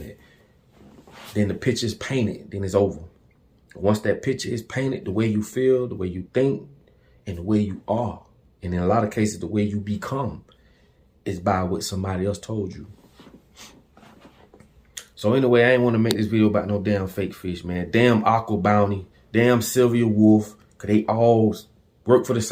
Then the picture is painted, then it's over. Once that picture is painted, the way you feel, the way you think, and the way you are, and in a lot of cases, the way you become, is by what somebody else told you. So anyway, I ain't want to make this video about no damn fake fish, man. Damn Aqua Bounty, damn Sylvia Wolf, because they all work for the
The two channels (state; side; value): identical; both; correlation 1.00